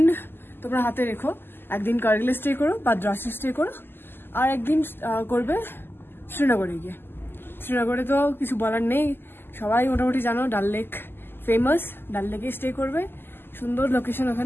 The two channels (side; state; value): right; late; 0.10 ms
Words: তোমরা হাতে রেখো, একদিন কার্গিলে স্টে করো বা দ্রাসে স্টে করো, আর একদিন করবে শ্রীনগরে গিয়ে। শ্রীনগরে তো কিছু বলার নেই, সবাই মোটামুটি জানো, ডাল লেক ফেমাস। ডাল লেকে স্টে করবে, সুন্দর লোকেশন,